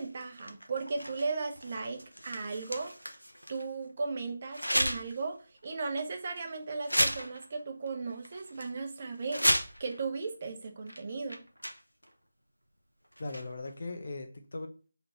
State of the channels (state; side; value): inverted; both; correlation -0.92